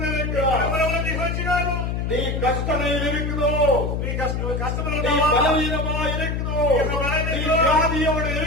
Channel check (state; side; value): noise; left; hum, 1 dB below the sound